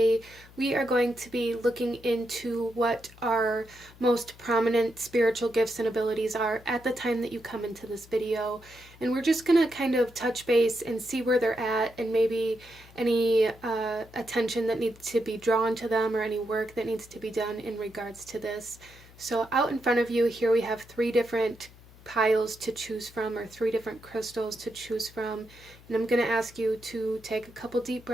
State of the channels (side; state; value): left; noise; hum, 22 dB below the sound